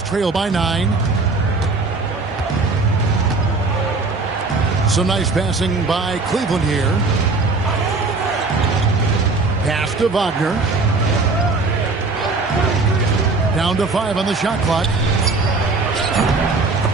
trail by 9. Some nice passing by Cleveland here. Pass to Wagner. Down to 5 on the shot clock.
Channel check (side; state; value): left; quieter; 3.8 dB